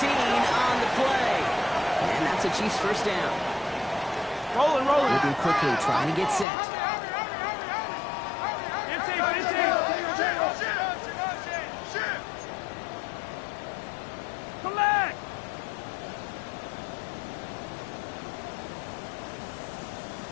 on the play. And that's a Chiefs 1st down. Rolling. Moving quickly, trying to get set. Come back!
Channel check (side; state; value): right; drops out; at 6.5 s